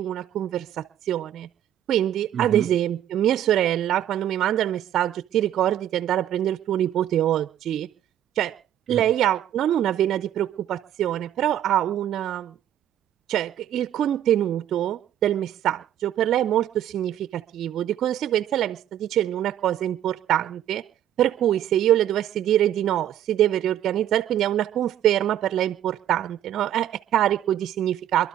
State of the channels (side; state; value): left; quieter; 11.3 dB